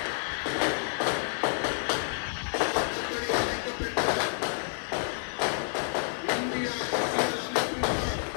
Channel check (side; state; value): right; silent; digital silence